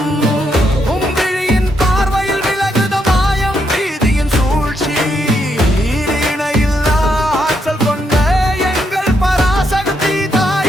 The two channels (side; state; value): both; normal; correlation 0.78